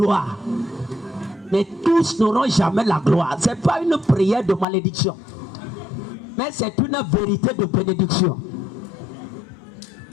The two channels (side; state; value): right; drops out; at 4.7 s